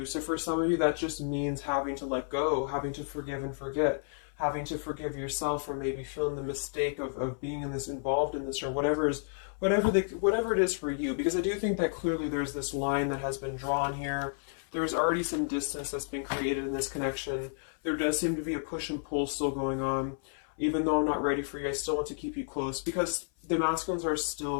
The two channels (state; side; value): silent; right; 57 dB below the other